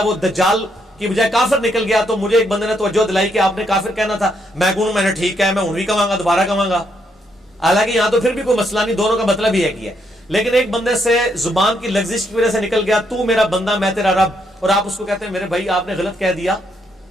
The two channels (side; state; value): both; normal; correlation 0.75